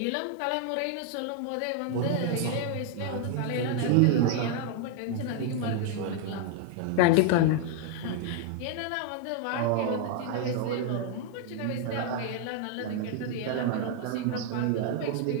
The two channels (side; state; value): both; different; correlation 0.00